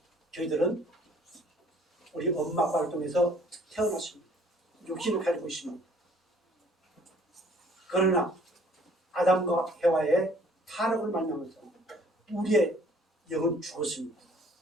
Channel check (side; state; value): both; normal; correlation 0.57